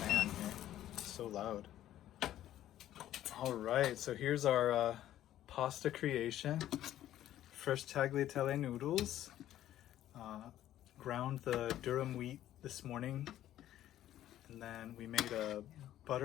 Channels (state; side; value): quieter; right; 12.6 dB